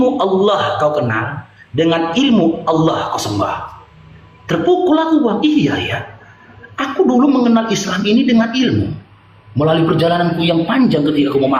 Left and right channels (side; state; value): both; identical; correlation 1.00